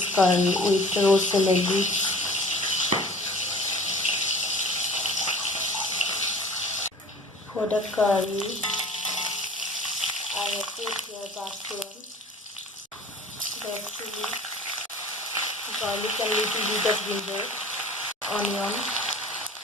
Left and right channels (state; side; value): normal; both; correlation 0.44